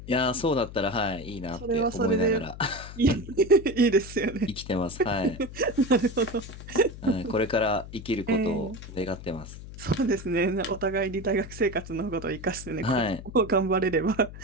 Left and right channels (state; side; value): noise; left; hum, 13 dB below the sound